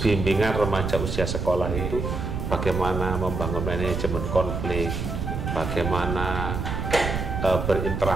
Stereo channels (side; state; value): right; noise; rumble, 3 dB below the sound